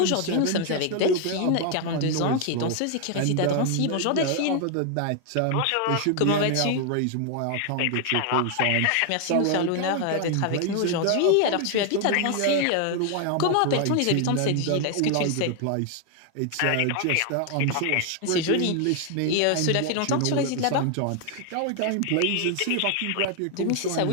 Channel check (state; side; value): different; both; correlation 0.00